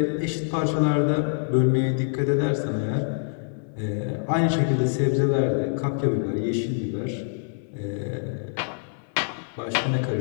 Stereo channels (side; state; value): right; silent; digital silence